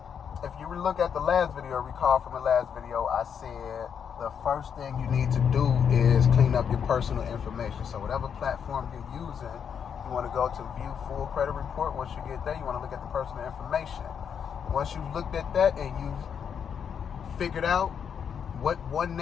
if you look at the last video, recall from the last video, I said the first thing you need to do is clean up your personal information. So whatever platform you're using, you want to go to view full credit report. Once you get there, you want to look at the personal information. Once you've looked at that and you've figured out what one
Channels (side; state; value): right; quieter; 7.5 dB